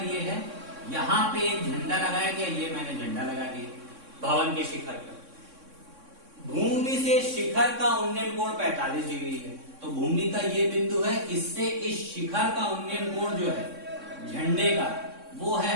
ये है, यहां पे एक झंडा लगाया गया, ये मैंने झंडा लगा दिया भवन के शिखर पर। भूमि से शिखर का उन्नयन कोण 45 डिग्री है, तो भूमि का ये बिंदु है, इससे इस शिखर का उन्नयन कोण जो है झंडे का वो है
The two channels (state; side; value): late; left; 3.6 ms